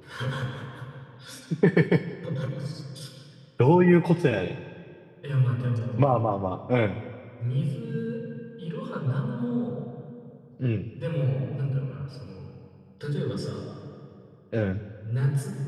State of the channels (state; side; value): identical; both; correlation 1.00